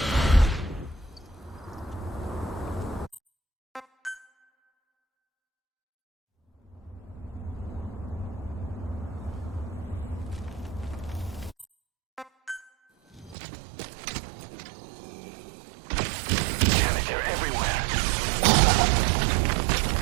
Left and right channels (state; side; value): drops out; left; at 13.4 s